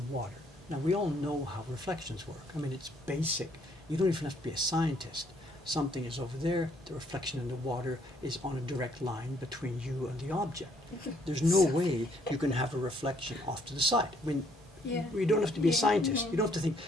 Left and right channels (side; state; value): both; normal; correlation 0.66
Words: water. Now, we all know how reflections work. I mean, it's basic. You don't even have to be a scientist. Something is over there, the reflection in the water is on a direct line between you and the object. There's no way you can have a reflection off to the side. I mean, you don't have to be a scientist. You don't have to think,